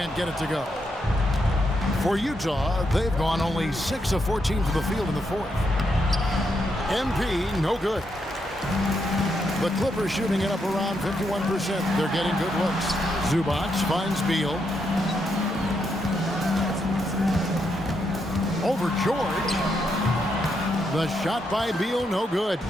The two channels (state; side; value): normal; both; correlation 0.80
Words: get it to go. For Utah, they've gone only 6 of 14 to the field in the fourth. MP, no good. The Clippers shooting it up around 51%. They're getting good looks. Zubac finds Beal. Over George. The shot by Beal, no good.